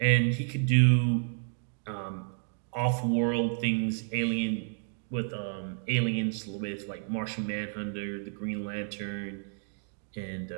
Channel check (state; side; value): silent; left; 57 dB below the other